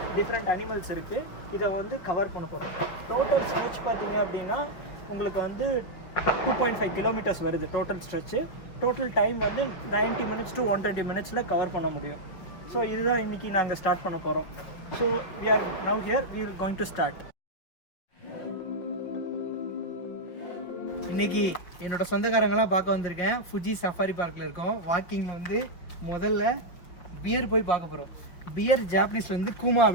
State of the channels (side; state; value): right; late; 5.9 ms